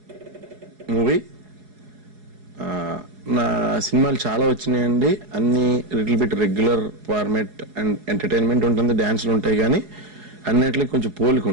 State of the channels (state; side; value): late; left; 4.8 ms